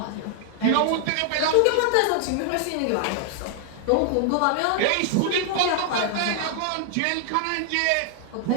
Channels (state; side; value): different; both; correlation -0.01